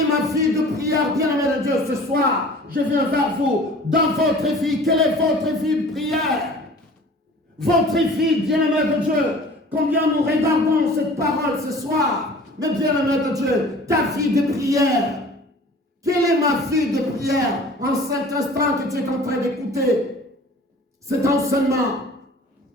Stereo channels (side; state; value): both; normal; correlation 0.45